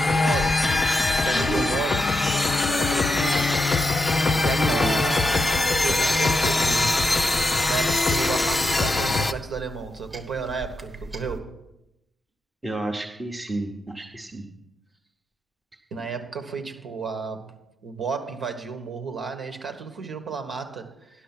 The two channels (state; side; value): normal; both; correlation 0.85